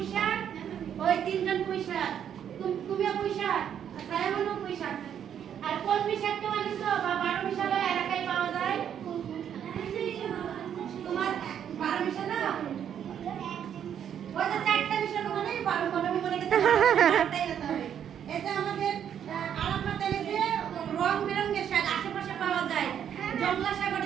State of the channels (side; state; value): left; quieter; 9.1 dB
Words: শাক? ওই তিনজন পুঁই শাক। তুমিও পুঁই শাক, সায়ামনও পুঁই শাক। আর কলমি শাক কেউ এনেছো? বা 12 মিশালো এলাকায় পাওয়া যায়? তোমার 12 মিশালো? ওই যে 4টা মিশালো মানে 12 আমি মনে করতে চারটাই হতে হবে। এটা আমাদের আরাফাত এনেছে রং বেরঙের শাক, আশেপাশে পাওয়া যায়। জংলা শাক,